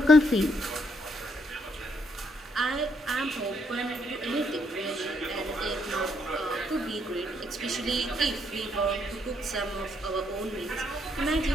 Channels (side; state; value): both; normal; correlation 0.73